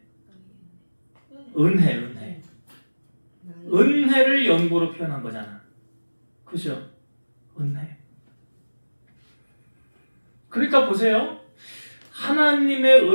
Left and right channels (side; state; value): both; inverted; correlation -1.00